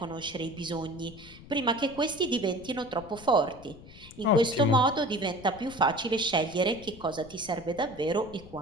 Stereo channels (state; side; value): noise; left; rumble, 19 dB below the sound